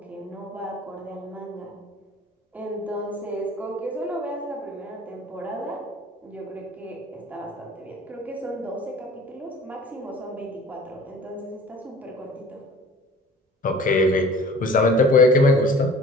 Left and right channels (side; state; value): both; normal; correlation 0.46